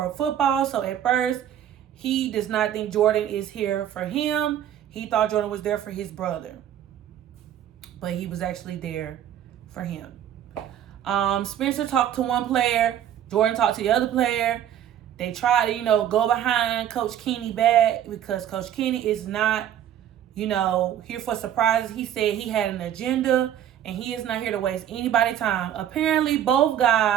football. So at first, he does not think Jordan is here for him. He thought Jordan was there for his brother. But he was actually there for him. Spencer talked to one player. Jordan talked to the other player. They tried to, go behind Coach Kenny back because Coach Kenny is not, here for surprises. He said he had an agenda and he is not here to waste anybody's time. Apparently, both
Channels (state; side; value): quieter; left; 10.5 dB